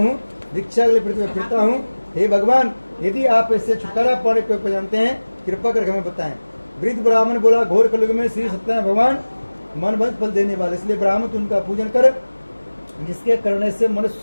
दीक्षा के लिए पृथ्वी में फिरता हूँ। हे भगवान, यदि आप इससे छुटकारा पाने को जानते हैं, कृपा करके हमें बताएं। वृद्ध ब्राह्मण बोला, घोर कलयुग में श्री सत्यनारायण भगवान मन भंग फल देने वाले, इसलिए ब्राह्मण उनका पूजन कर, जिसके करने से मनुष्य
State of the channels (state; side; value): inverted; both; correlation -1.00